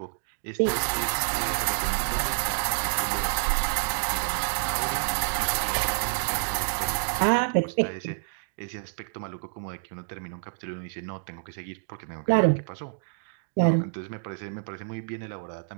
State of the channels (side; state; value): left; silent; digital silence